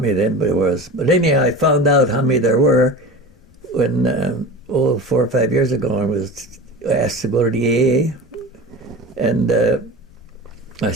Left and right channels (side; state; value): both; normal; correlation 0.32